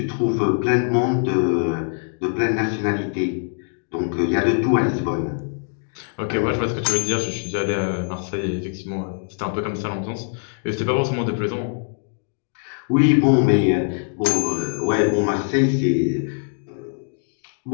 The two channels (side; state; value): right; silent; 61 dB below the other